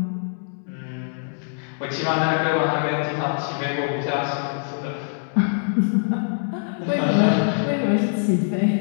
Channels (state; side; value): silent; right; digital silence